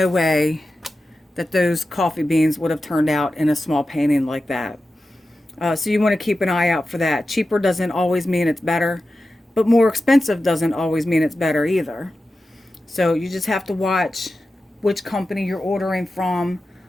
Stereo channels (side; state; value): both; normal; correlation 0.93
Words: way that those coffee beans would have turned out in a small painting like that. So you want to keep an eye out for that. Cheaper doesn't always mean it's better, but more expensive doesn't always mean it's better either. So you just have to watch which company you're ordering from,